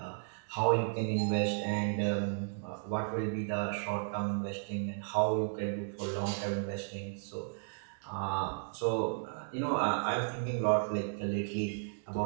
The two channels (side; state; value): left; silent; digital silence